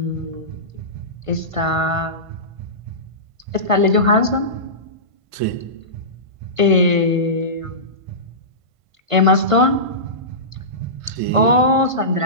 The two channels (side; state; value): left; late; 1.5 ms